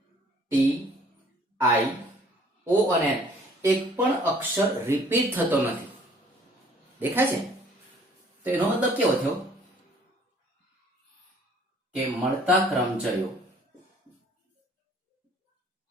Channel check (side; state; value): both; normal; correlation 0.57